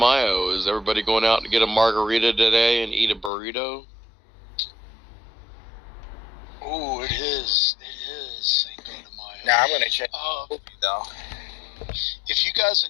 Is everybody going out to get a margarita today and eat a burrito? Oh, it is Cinco de Mayo. Now I'm gonna check though. If you guys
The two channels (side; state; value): right; drops out; at 3.3 s